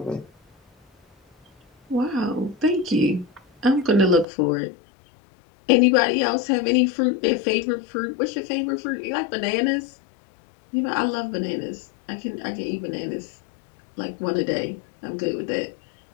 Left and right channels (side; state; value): right; drops out; at 4.2 s